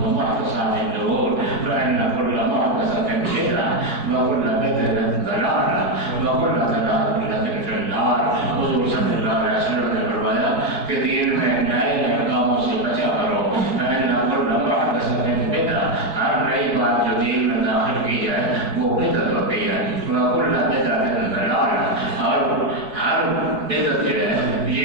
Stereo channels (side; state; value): left; late; 4.8 ms